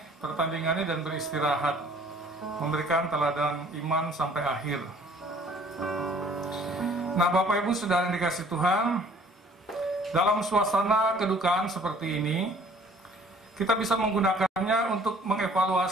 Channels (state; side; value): normal; both; correlation 0.55